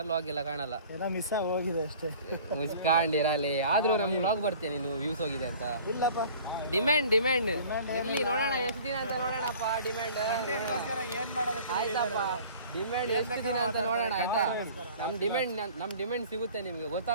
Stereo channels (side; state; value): both; inverted; correlation -0.47